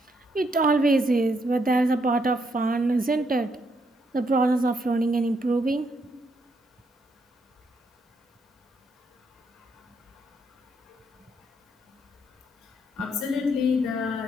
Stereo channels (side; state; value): both; normal; correlation 0.75